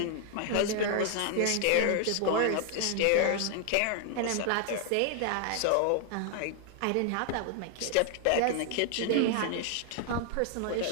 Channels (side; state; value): both; different; correlation 0.00